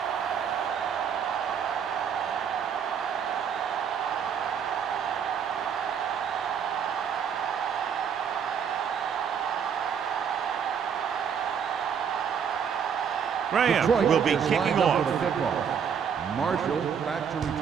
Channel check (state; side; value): quieter; left; 7.4 dB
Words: Graham will be kicking off. Marshall back to